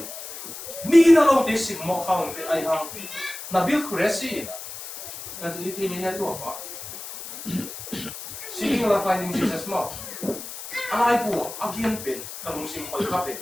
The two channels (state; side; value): noise; left; hiss, 10 dB below the sound